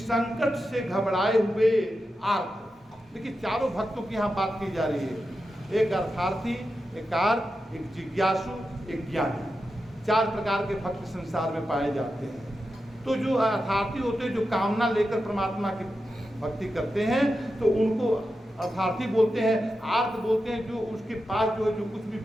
से घबराए हुए आर्त। देखिए, चारों भक्तों की यहाँ बात की जा रही है, एक अर्थार्थी, एक आर्त, एक जिज्ञासु, एक ज्ञानी। 4 प्रकार के भक्त संसार में पाए जाते हैं। तो जो अर्थार्थी होते हैं, जो कामना लेकर परमात्मा की भक्ति करते हैं, तो उनको अर्थार्थी बोलते हैं। आर्त बोलते हैं जो उसके पास जो है, जो कुछ भी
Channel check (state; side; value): normal; both; correlation 0.90